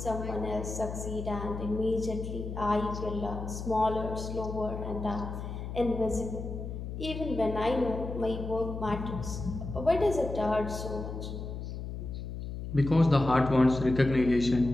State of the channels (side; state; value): left; noise; hum, 7 dB below the sound